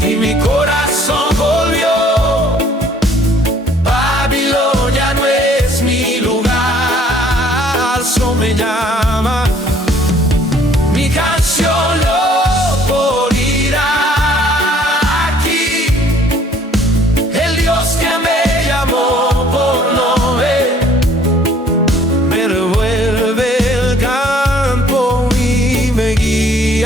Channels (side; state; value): both; normal; correlation 0.58